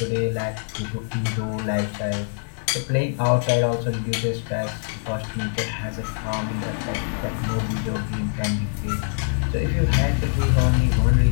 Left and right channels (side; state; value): right; silent; digital silence